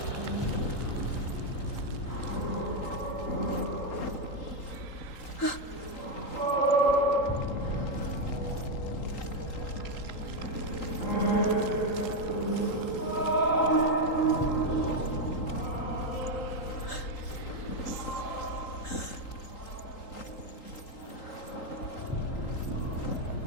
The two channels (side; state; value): right; late; 3.8 ms